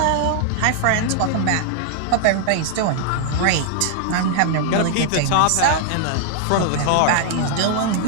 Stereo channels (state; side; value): different; both; correlation -0.01